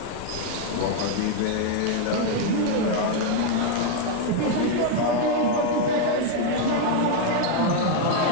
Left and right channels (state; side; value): different; both; correlation 0.00